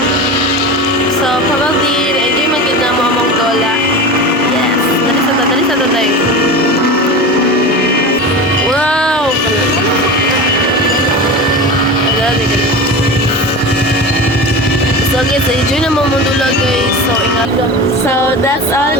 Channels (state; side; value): normal; both; correlation 0.29